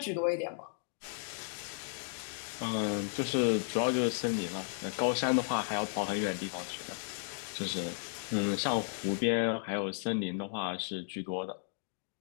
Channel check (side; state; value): right; silent; digital silence